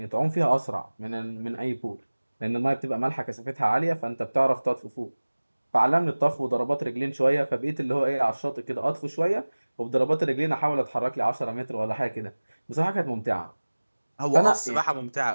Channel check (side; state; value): both; inverted; correlation -1.00